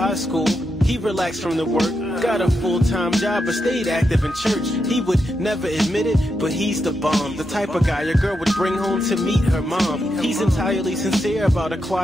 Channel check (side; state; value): both; normal; correlation 0.85